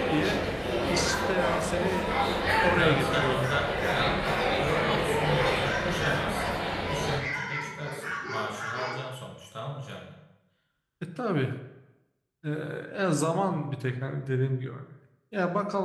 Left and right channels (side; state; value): both; identical; correlation 1.00